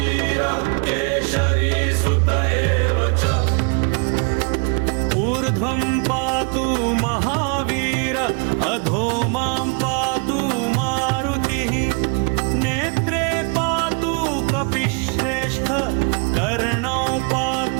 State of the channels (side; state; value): left; quieter; 36.1 dB